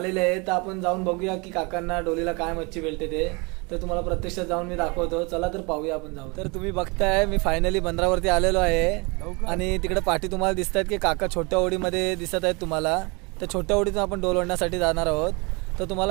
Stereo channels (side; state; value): left; quieter; 28.9 dB